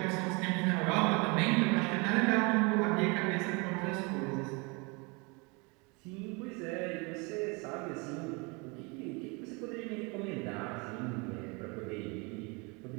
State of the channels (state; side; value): quieter; left; 29.6 dB